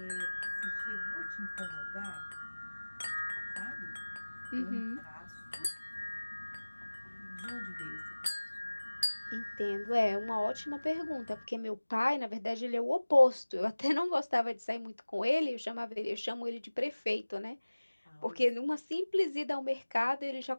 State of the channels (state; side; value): inverted; both; correlation -1.00